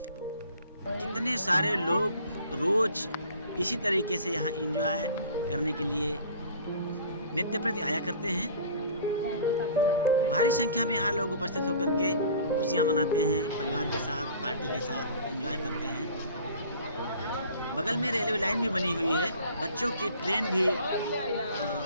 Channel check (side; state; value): both; inverted; correlation -0.47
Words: सारे लोग रोज इसी तरीके से यहाँ एंजॉय करने के लिए नित्य प्रति आया करते हैं। भारी संख्या में यहाँ लोग उपस्थित होकर के खुशियाँ मनाते हैं, परिवार के साथ, पार्टी के साथ एंजॉय करते हैं। बगल में रेलवे लाइन भी बनी हुई है, बच्चों की ट्रेन भी